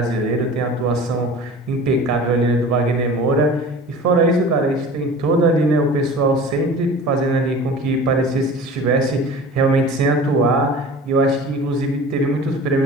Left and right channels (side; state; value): both; normal; correlation 0.40